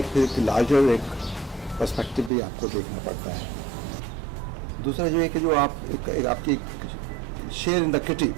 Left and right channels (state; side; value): drops out; left; at 2.3 s